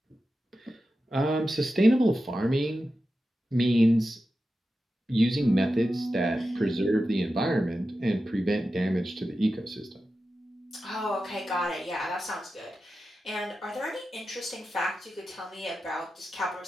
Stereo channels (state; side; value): normal; both; correlation 0.92